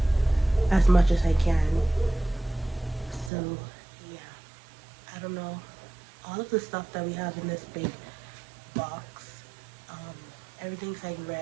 as much as I can. So yeah, I don't know, all of the stuff that we have in this big box, everything's like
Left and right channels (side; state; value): left; drops out; at 3.3 s